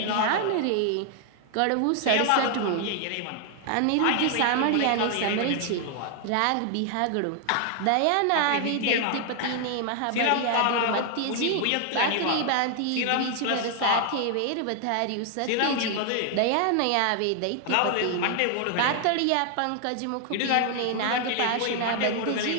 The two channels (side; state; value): both; different; correlation 0.00